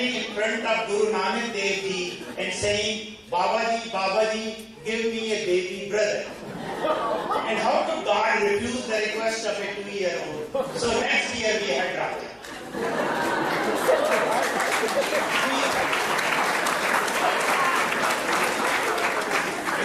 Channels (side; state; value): both; identical; correlation 1.00